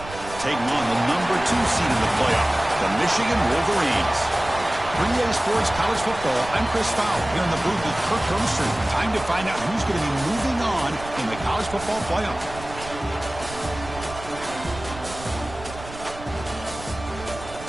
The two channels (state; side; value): noise; right; rumble, 14 dB below the sound